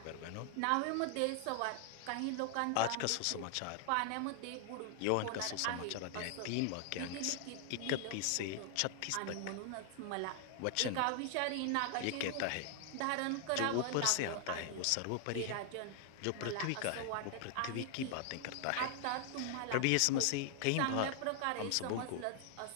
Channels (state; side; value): different; both; correlation 0.00